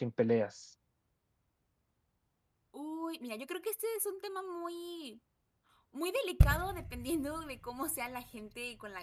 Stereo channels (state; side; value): identical; both; correlation 1.00